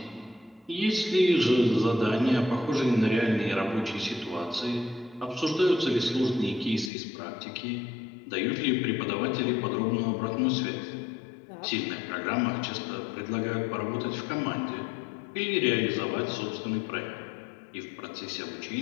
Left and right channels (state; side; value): drops out; right; at 6.9 s